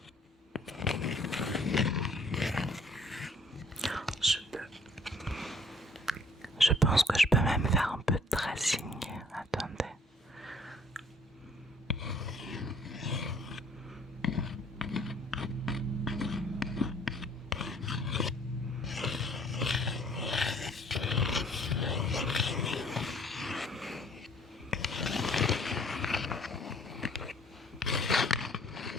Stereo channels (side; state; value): both; normal; correlation 0.59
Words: Je pense que je peux même faire un peu de tracing. Attendez.